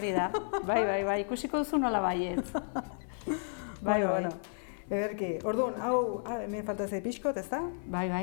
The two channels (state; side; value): silent; right; 56 dB below the other